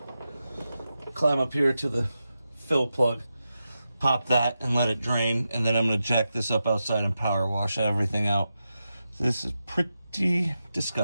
climb up here to the fill plug, pop that and let it drain, and then I'm gonna jack this up outside and power wash everything out. This is pretty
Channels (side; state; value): both; inverted; correlation -0.90